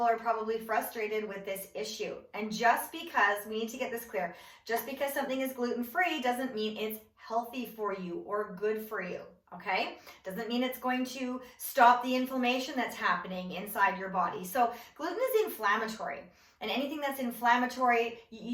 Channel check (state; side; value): identical; both; correlation 1.00